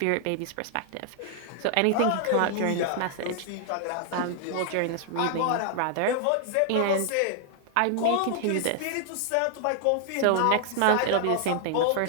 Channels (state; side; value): different; both; correlation 0.00